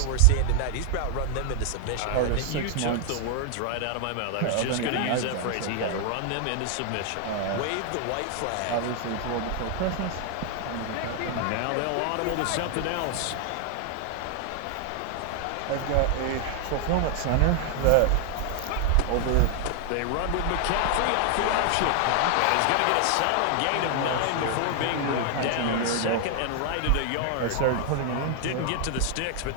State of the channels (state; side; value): different; both; correlation 0.00